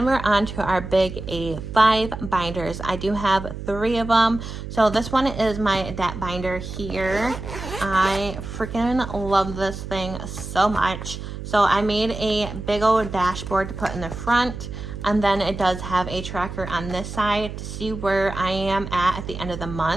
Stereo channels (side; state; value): right; noise; hum, 8 dB below the sound